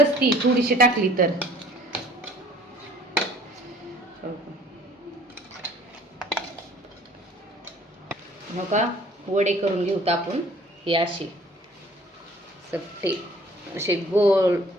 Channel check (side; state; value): both; normal; correlation 0.53